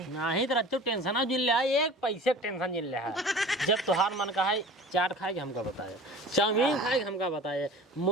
नहीं तो रच्चो टेंशन जिन ले एक पैसे टेंशन जिन ले जब तुहार मन का है चाट खाए के हमका बताया चाउमीन खाए हमका बताया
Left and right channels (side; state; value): both; normal; correlation 0.40